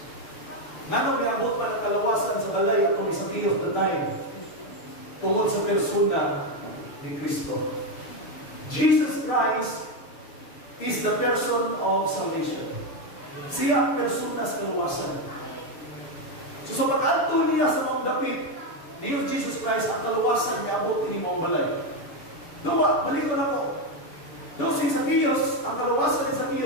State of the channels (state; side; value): late; right; 6.9 ms